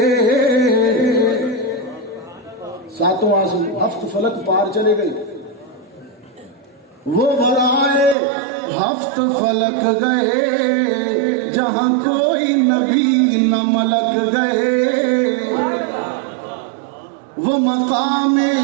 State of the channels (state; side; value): drops out; left; at 8.2 s